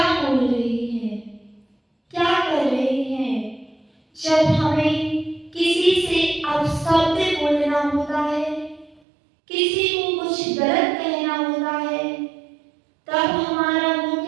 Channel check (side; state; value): left; drops out; at 9.0 s